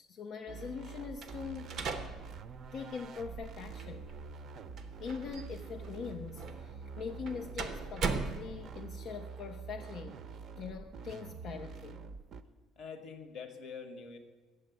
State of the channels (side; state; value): both; normal; correlation 0.62